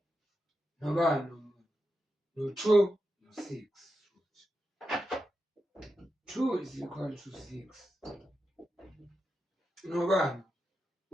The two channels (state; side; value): normal; both; correlation 0.88